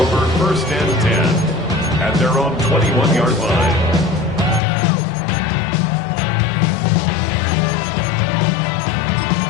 1st and 10 at their own 21-yard line.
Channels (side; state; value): right; drops out; at 4.6 s